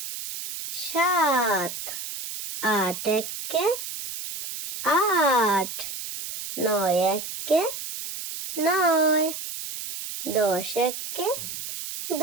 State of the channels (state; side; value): noise; right; hiss, 8 dB below the sound